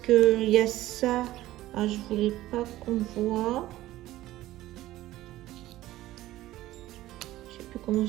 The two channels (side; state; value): left; quieter; 15.7 dB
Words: y a ça. Ah, je voulais pas qu'on voit. Je sais plus comment